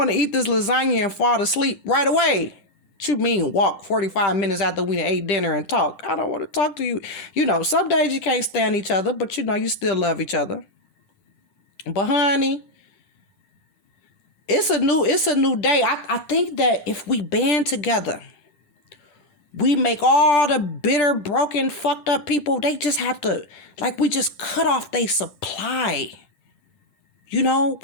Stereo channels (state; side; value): late; right; 10 ms